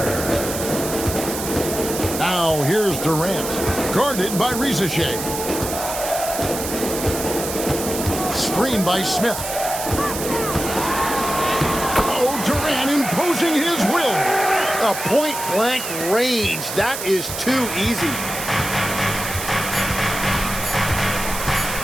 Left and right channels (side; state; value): right; noise; hiss, 6 dB below the sound